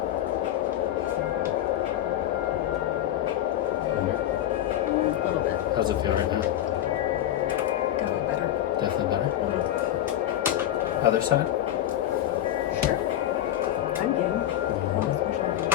Under. A little bit. How's it feel right now? Definitely better. Definitely better. Mhm. Other side? Sure. I'm game. Oh, especially after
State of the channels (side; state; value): right; quieter; 12.5 dB